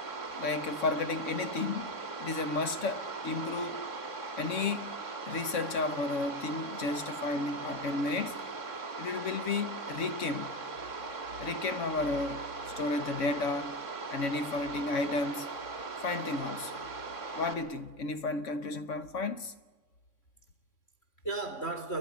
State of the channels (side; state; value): right; late; 3.6 ms